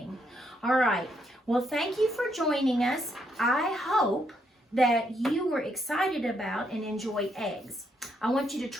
All right. Well, thank you for joining us. I hope that you were excited about and enjoy eggs. I want you to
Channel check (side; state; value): both; normal; correlation 0.76